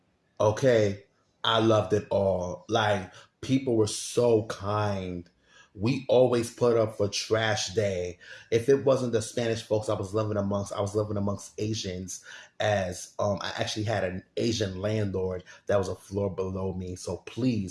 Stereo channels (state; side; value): identical; both; correlation 1.00